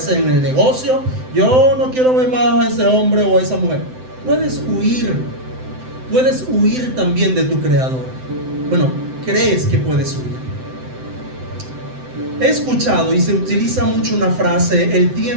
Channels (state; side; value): late; left; 7.8 ms